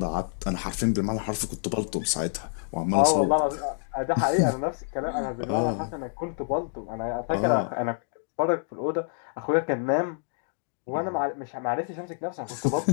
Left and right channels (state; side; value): silent; right; digital silence